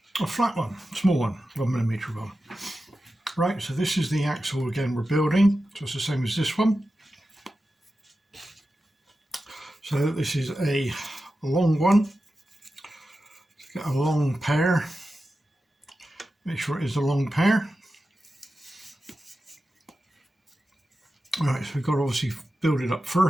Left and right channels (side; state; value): both; normal; correlation 0.92